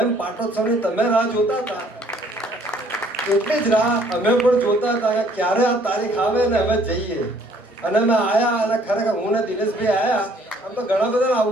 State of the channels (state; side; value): normal; both; correlation 0.61